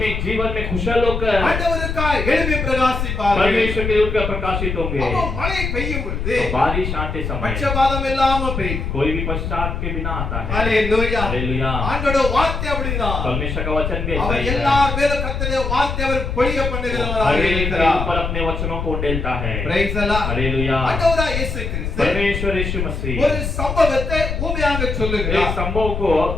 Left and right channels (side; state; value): left; noise; rumble, 3 dB below the sound